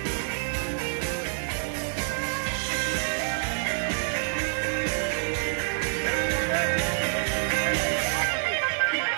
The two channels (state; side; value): silent; left; digital silence